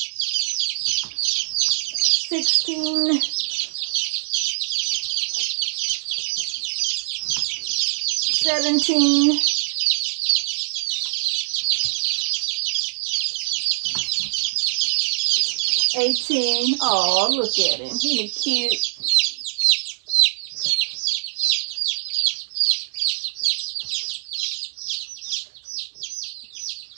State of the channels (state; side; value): silent; left; digital silence